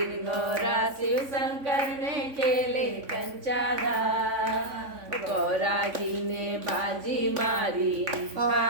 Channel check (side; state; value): left; late; 3.5 ms